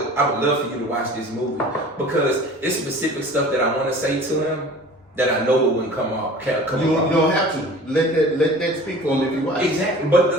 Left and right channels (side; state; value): both; normal; correlation 0.43